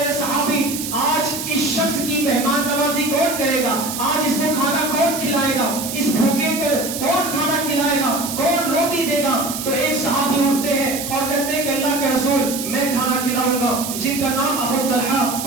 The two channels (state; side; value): noise; right; hiss, 6 dB below the sound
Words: صحابی, آج اس شخص کی مہمان نوازی کون کرے گا, آج اس کو کھانا کون کھلائے گا, اس بھوکے کو کون کھانا کھلائے گا, کون روٹی دے گا. تو ایک صحابی اٹھتے ہیں اور کہتے ہیں کہ اللہ کے رسول میں کھانا کھلاؤں گا, جن کا نام ابو طلحہ